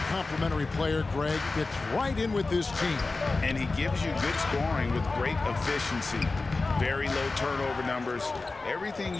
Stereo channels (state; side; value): quieter; right; 3.6 dB